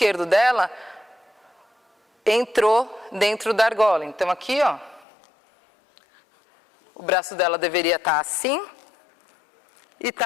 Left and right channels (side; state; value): right; drops out; at 5.1 s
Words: dela entrou dentro da argola. Então aqui, ó, o braço dela deveria estar assim e